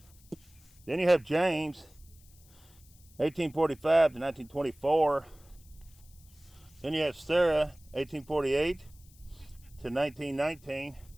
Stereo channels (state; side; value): noise; left; hiss, 27 dB below the sound